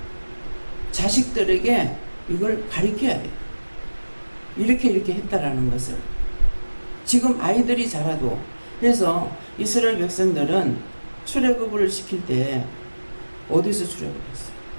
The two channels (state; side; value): inverted; both; correlation -1.00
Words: 자식들에게 이걸 가르쳐야 돼요. 이렇게 했다라는 것을. 지금 아이들이 자라도. 그래서 이스라엘 백성들은 출애굽을 시킬 때 어디서 출애굽했어요?